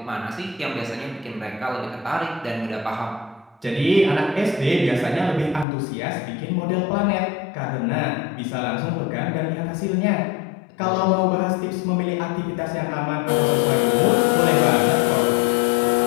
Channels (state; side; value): drops out; right; at 5.7 s